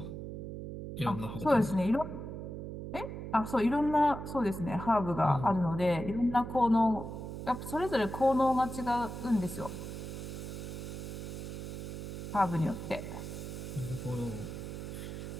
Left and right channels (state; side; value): noise; right; hum, 7 dB below the sound